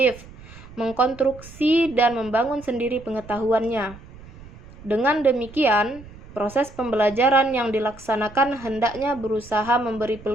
mengkonstruksi dan membangun sendiri pengetahuannya. Dengan demikian, Proses pembelajaran yang dilaksanakan hendaknya berusaha memberi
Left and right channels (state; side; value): noise; right; rumble, 19 dB below the sound